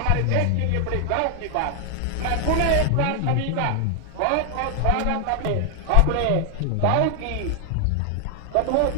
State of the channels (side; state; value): both; different; correlation 0.00